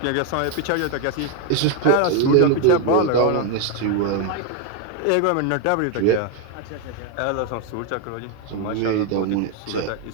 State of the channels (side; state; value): both; different; correlation 0.01